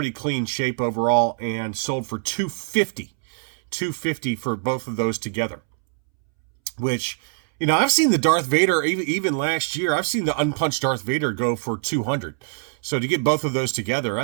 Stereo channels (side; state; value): left; silent; 63 dB below the other